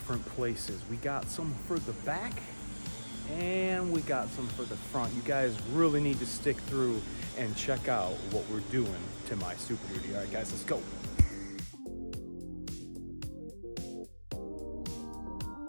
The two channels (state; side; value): inverted; both; correlation -1.00